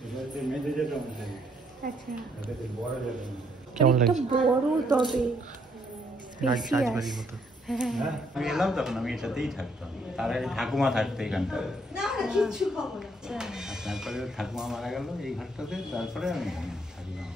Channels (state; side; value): normal; both; correlation 0.70